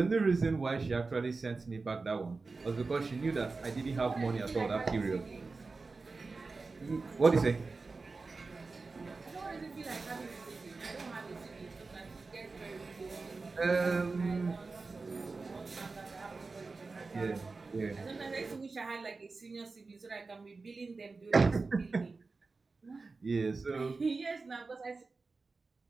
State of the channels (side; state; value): left; quieter; 4.0 dB